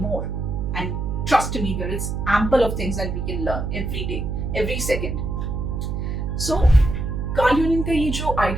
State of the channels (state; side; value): noise; right; hum, 2 dB below the sound